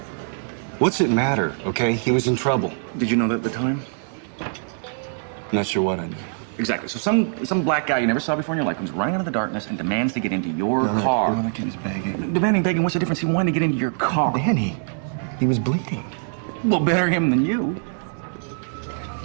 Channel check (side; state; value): left; silent; 63 dB below the other